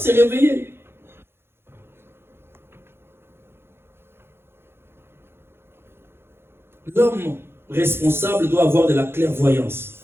réveiller. L'homme responsable doit avoir de la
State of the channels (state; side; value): late; left; 0.11 ms